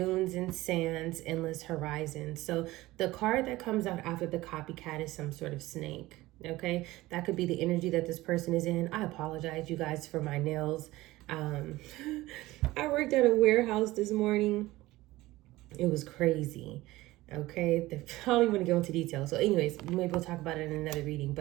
and sands, endless horizons. So the card that comes out after the copycat is some sort of snake. Okay, that could be the energy that this person is in. I apologize, you guys, for my nails. I worked at a warehouse this morning. It was crazy. Okay, I don't even want to go into detail. So anyways, maybe we'll talk about it in another reading.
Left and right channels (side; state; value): left; quieter; 18.3 dB